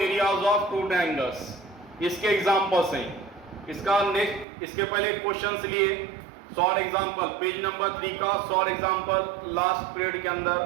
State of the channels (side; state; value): left; drops out; at 4.5 s